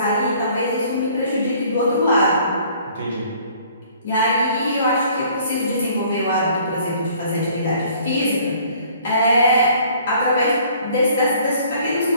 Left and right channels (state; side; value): inverted; both; correlation -0.56